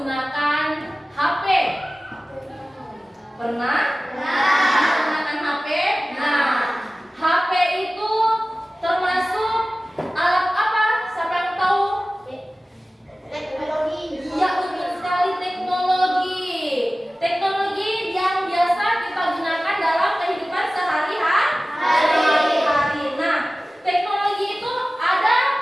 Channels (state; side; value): normal; both; correlation 0.97